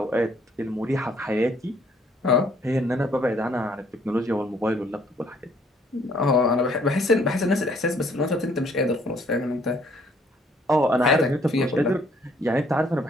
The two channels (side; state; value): both; normal; correlation 0.63